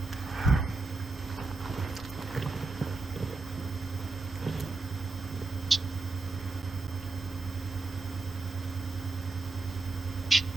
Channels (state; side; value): quieter; left; 3.6 dB